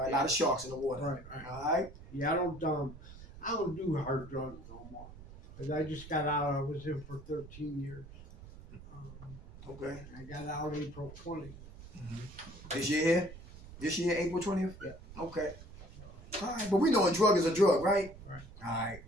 right. A lot of sharks in the water. Right. All right. Yeah, I don't do hard drugs no more. 'Cause I just got out. I was in for 13 years. Okay. I got out April 20th. This year here? This year, April 20th? Yeah. Okay. All right. But we know a drug is a drug, right? Right. All right.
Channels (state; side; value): noise; right; rumble, 16 dB below the sound